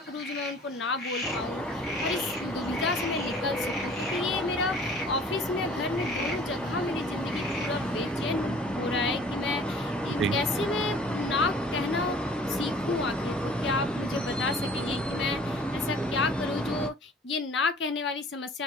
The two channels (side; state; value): both; normal; correlation 0.50